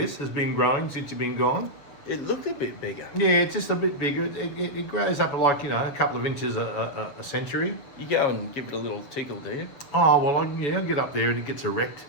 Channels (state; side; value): late; right; 7.4 ms